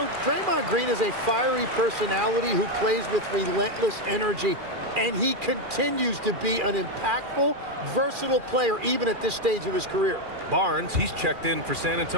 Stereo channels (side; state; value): left; late; 2.4 ms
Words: Draymond Green is a fiery personality who plays with relentless energy. And he continues to be an impactful, versatile player even at this stage of his career. Barnes, he's checked in for San